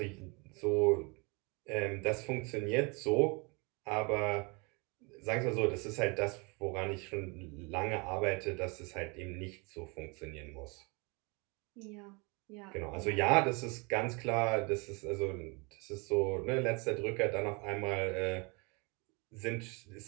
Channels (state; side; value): quieter; left; 29.9 dB